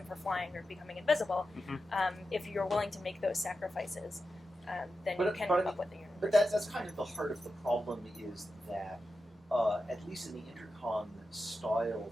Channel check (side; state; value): both; normal; correlation 0.90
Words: for flying or becoming invisible. If you're willing to make those sacrifices, then you can come up with the universe. But that's kind of the heart of the problem, is that at least in the Intercon style,